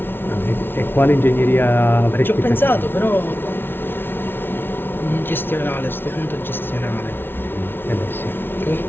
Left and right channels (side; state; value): right; late; 0.11 ms